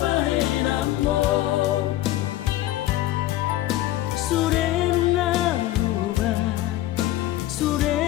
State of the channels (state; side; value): quieter; right; 14.9 dB